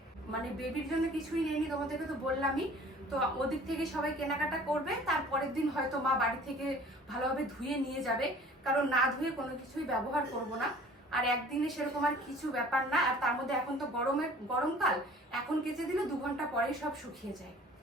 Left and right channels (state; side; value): normal; both; correlation 0.49